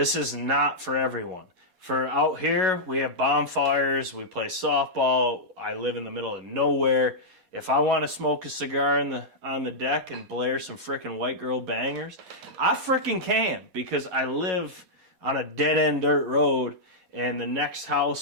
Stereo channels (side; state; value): left; late; 4.2 ms